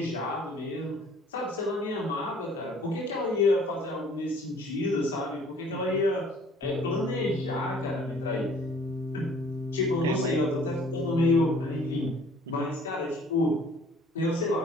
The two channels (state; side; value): normal; both; correlation 0.54